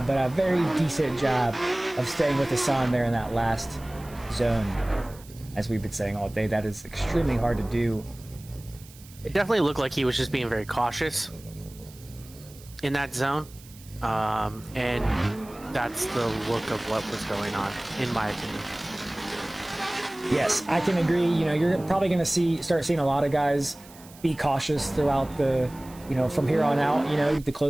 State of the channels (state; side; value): noise; right; hiss, 22 dB below the sound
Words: but a very decent job of staying with Hassan there in that last zone. As we've been saying all day, that is extremely hard to do. It definitely looked like he was just being very cautious in that zone. And that's the look of what was going on, in my opinion. Yes, I can agree. You're probably going to start seeing a lot of guys be cautious throughout the, from here on out, the